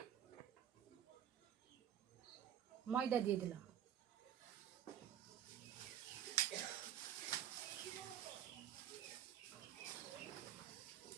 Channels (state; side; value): quieter; left; 10.1 dB